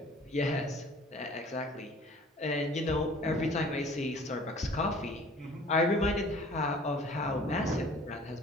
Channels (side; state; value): both; normal; correlation 0.50